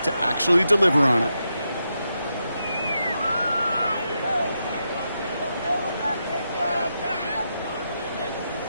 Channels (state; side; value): inverted; both; correlation -0.84